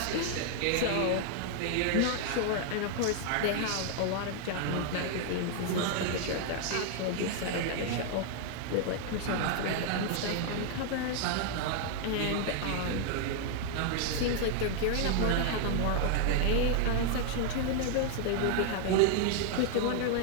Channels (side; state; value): both; different; correlation 0.00